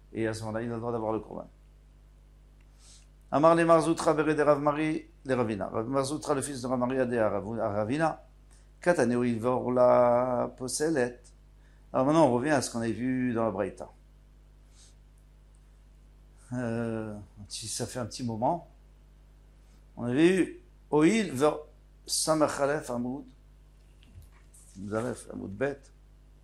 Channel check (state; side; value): identical; both; correlation 1.00